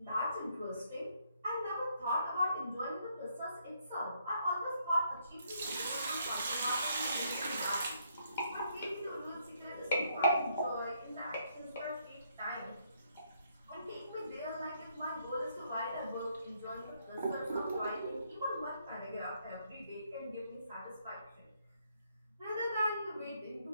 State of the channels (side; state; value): both; inverted; correlation -0.72